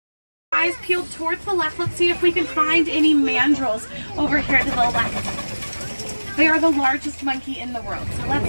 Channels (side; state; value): both; inverted; correlation -1.00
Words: Eyes peeled towards the left. Let's see if we can find any mandrills over here to the left. They are the largest monkey in the world, so